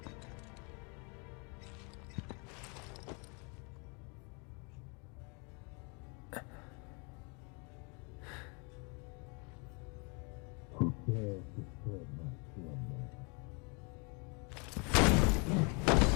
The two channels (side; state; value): right; quieter; 33.4 dB